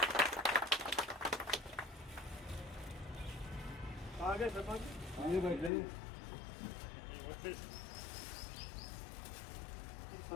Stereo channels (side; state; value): right; drops out; at 5.7 s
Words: आगे शर्मा जी,